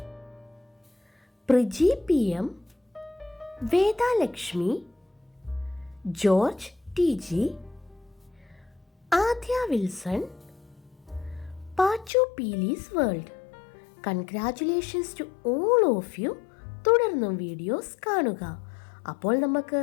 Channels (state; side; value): drops out; right; at 12.1 s